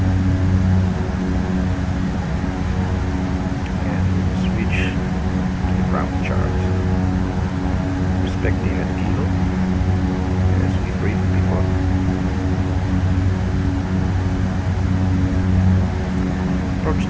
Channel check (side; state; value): both; identical; correlation 1.00